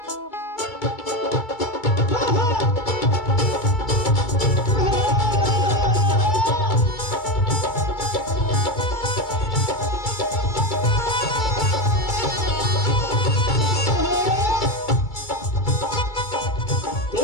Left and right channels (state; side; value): late; right; 2.3 ms